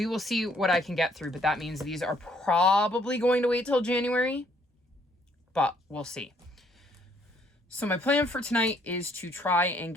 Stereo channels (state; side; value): normal; both; correlation 0.66